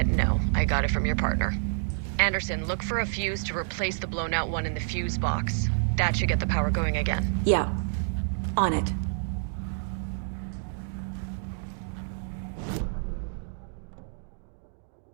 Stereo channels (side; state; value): left; silent; digital silence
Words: no, I got it from your partner. Anderson, look for a fuse to replace the blown out one in the fuse box. That should get the power going again. Yeah. On it.